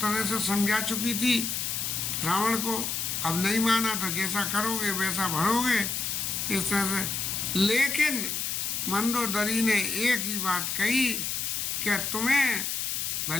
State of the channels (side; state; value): left; noise; hiss, 1 dB below the sound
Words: से समझा चुकी थी रावण को। अब नहीं माना तो जैसा करोगे वैसा भरोगे, इस तरह से। लेकिन मंदोदरी ने एक ही बात कही कि तुम्हें